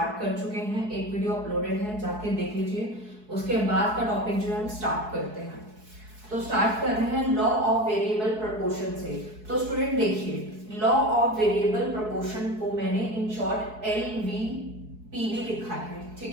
कर चुके हैं। एक वीडियो अपलोडेड है, जाके देख लीजिए। उसके बाद का टॉपिक जो है हम स्टार्ट करते हैं। तो स्टार्ट कर रहे हैं लॉ ऑफ वेरिएबल प्रोपोर्शन से। तो स्टूडेंट देखिए, लॉ ऑफ वेरिएबल प्रोपोर्शन को मैंने इन शॉर्ट LVPV लिखा है,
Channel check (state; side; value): late; left; 4.7 ms